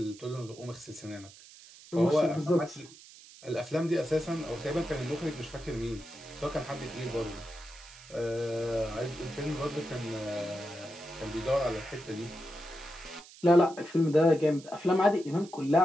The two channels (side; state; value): right; noise; hiss, 20 dB below the sound